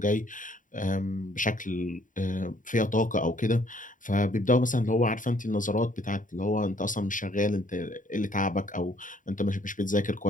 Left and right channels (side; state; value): right; late; 0.38 ms